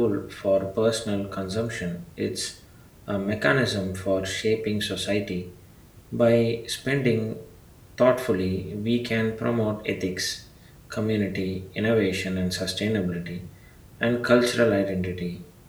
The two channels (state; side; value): identical; both; correlation 1.00